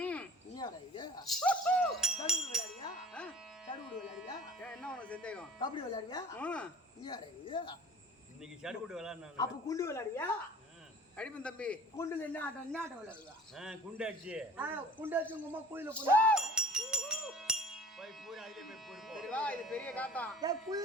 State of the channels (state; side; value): normal; both; correlation 0.46